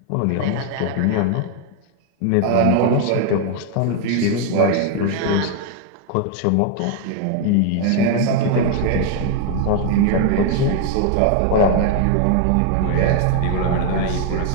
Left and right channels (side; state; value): both; different; correlation 0.00